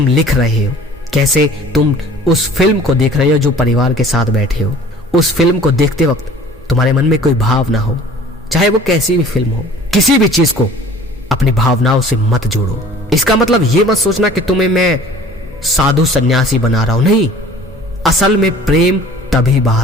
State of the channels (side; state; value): both; normal; correlation 0.48